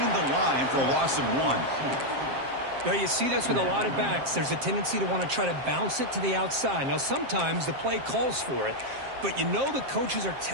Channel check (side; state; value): left; late; 7.5 ms